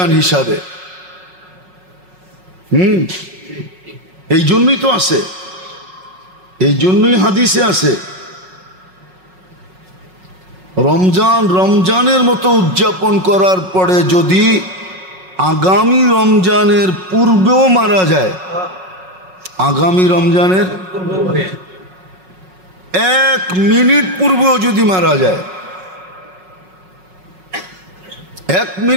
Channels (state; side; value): late; left; 5.4 ms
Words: হিসাবে। এই জন্যই তো আছে, এই জন্যই হাদিসে আছে, রমজান রমজানের মতো উদযাপন করার পরে যদি আগামী রমজানের পূর্বেও মারা যায়, আগামী রমজানের 1 মিনিট পূর্বেও যদি মারা যায়, 1